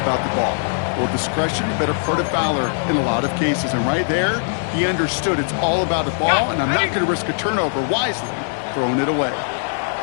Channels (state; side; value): silent; right; digital silence